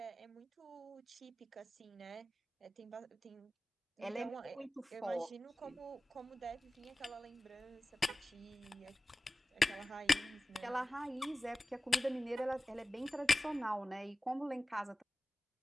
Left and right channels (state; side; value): normal; both; correlation 0.96